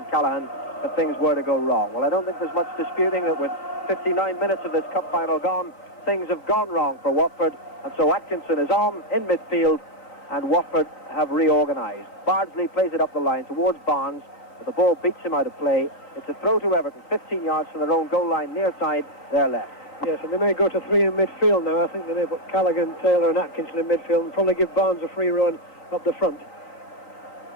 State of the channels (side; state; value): right; late; 3.5 ms